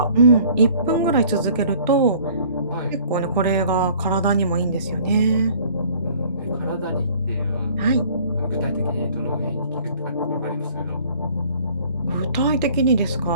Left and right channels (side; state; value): both; inverted; correlation -0.53